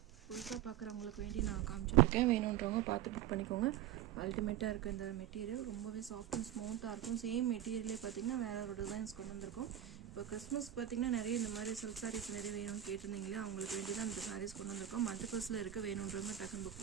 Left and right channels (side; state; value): left; quieter; 11.7 dB